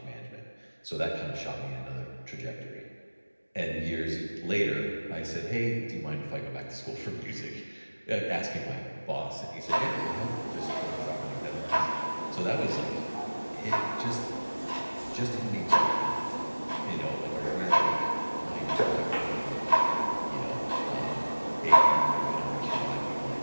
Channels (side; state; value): both; inverted; correlation -1.00